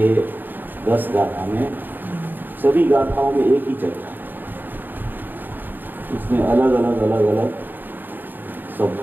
10 गाथा में, सभी गाथाओं में एक ही चर्चा है। उसमें अलग अलग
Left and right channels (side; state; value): left; late; 0.091 ms